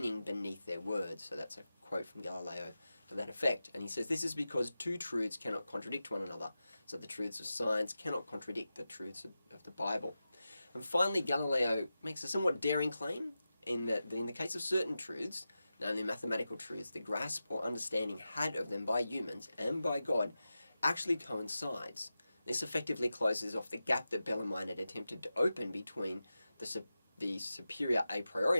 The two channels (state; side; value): inverted; both; correlation -0.93